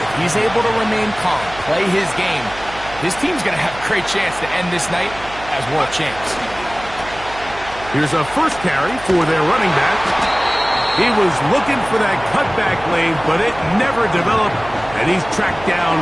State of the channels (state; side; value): noise; right; hum, 16 dB below the sound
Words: he's able to remain calm, play his game, his team's going to have a great chance to end this night as world champs. Here's a first carry for their running back. He was looking for that cutback lane, but it never developed, and he's tracked down